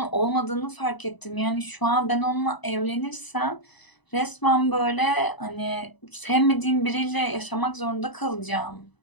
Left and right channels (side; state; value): right; late; 1.0 ms